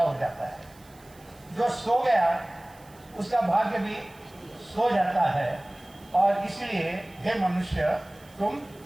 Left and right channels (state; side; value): noise; right; hiss, 26 dB below the sound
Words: जाता है, जो सो गया उसका भाग्य भी सो जाता है। और इसलिए हे मनुष्य, तुम